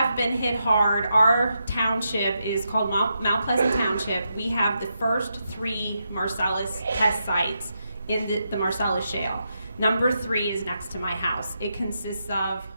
been hit hard. Our township is called Mount Pleasant Township. We have the first 3 Marcellus test sites in the Marcellus Shale. Number 3 is next to my house. It consists of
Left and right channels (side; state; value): both; inverted; correlation -0.84